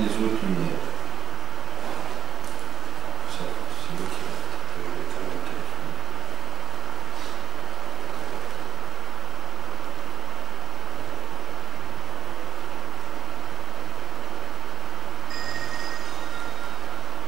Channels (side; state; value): left; quieter; 8.1 dB